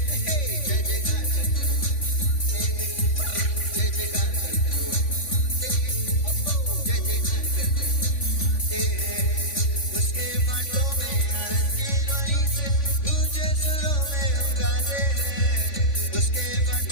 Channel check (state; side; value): late; right; 3.5 ms